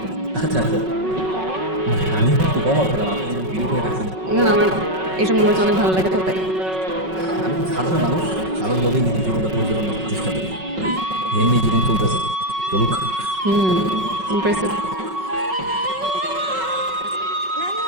আচ্ছা আচ্ছা, আমি একটু কম করলাম, আপনি ভিডিও করে রাখছেন। না না, আমার এইসব মোমেন্টস অনেক ভালো লাগে, তো তাই। আমি তো সাধারণ মানুষ, সাধারণভাবেই নিজের জীবনটা পরিচালনা করার চেষ্টা করি, এমনি জীবন চলতেছে, চলুক। ইমপ্রেসিভ।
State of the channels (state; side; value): late; left; 5.4 ms